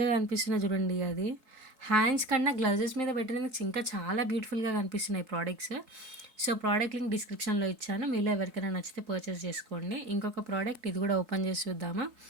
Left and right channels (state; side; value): late; left; 4.6 ms